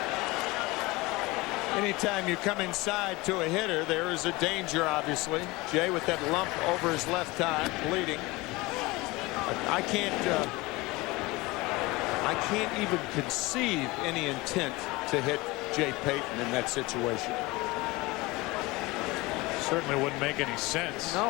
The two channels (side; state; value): right; quieter; 22.3 dB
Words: Anytime you come inside to a hitter, there is a danger, obviously. Jay with that lump over his left eye, bleeding. I can't even conceive any intent to hit Jay Payton in that situation. Certainly wouldn't make any sense.